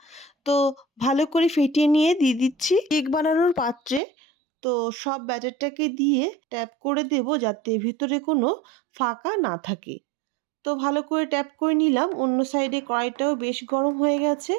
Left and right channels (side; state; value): left; drops out; at 4.0 s